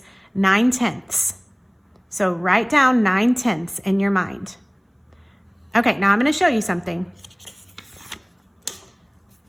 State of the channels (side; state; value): both; identical; correlation 1.00